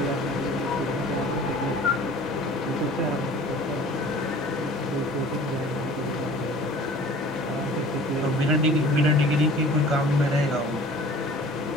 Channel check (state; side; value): normal; both; correlation 0.46